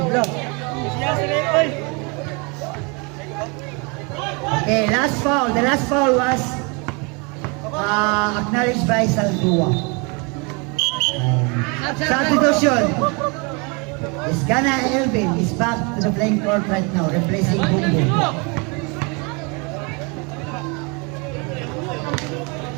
Okay, last foul. The last foul was acknowledged by Saldua. Substitution. Isgana Elvin is back to the playing court right now, replacing Bungo.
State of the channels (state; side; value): quieter; left; 31.2 dB